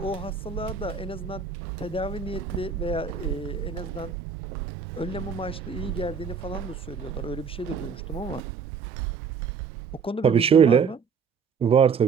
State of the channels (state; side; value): quieter; left; 6.0 dB